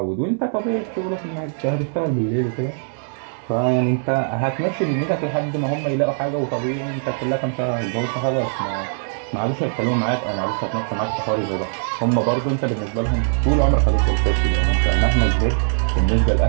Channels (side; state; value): left; silent; digital silence